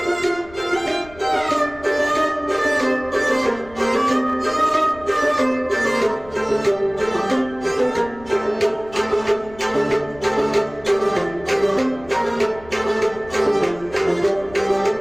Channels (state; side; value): noise; left; rumble, 21 dB below the sound